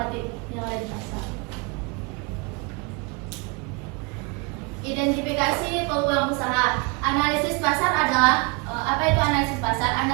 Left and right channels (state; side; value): quieter; left; 30.5 dB